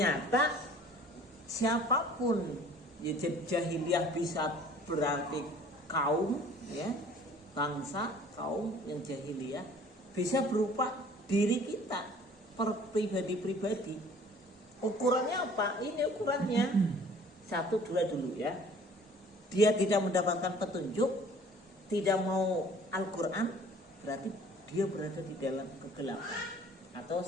siapapun, ya jahiliyah bisa berarti kaum, ya bangsa, kaum yang jahiliyah bisa berupa diri kita, per pribadi-pribadi. Ukurannya apa? Ini ukurannya 1, 2 dulu ya. Dia tidak mendapatkan petunjuk, tidak mau Al-Quran, berarti dia berada di dalam kegelapan, atau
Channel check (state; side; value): normal; both; correlation 0.52